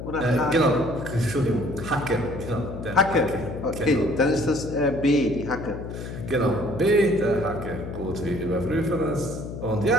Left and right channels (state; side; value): noise; left; hum, 8 dB below the sound